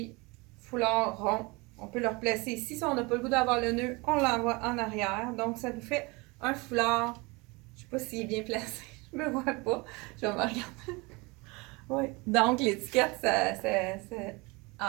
foulard rond. On peut le replacer ici. Si on n'a pas le goût d'avoir le nœud, on l'envoie en arrière. Donc, ça nous fait un foulard. Je ne sais pas s'il est bien placé. Je ne me vois pas. Je vais me regarder. Oui. Donc, l'étiquette, ça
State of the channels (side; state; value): left; quieter; 26.1 dB